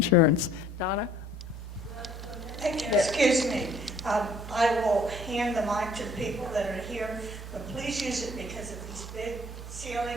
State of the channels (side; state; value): both; normal; correlation 0.57